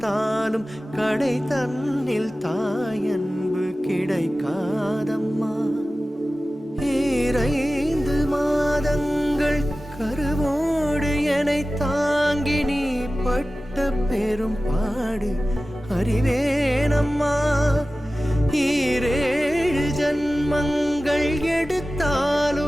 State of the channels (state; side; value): normal; both; correlation 0.96